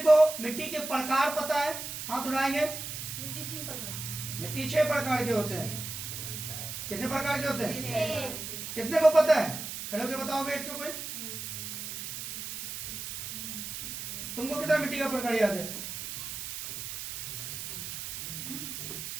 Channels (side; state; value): right; noise; hiss, 7 dB below the sound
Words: मिट्टी के प्रकार पता है? हाथ उठाएंगे। मिट्टी 3 प्रकार, मिट्टी 6 प्रकार के होते हैं। कितने प्रकार के होते हैं? 6। कितने को पता है? खड़े होकर बताओगे एक कोई। तुमको कितना मिट्टी का प्रकार याद है?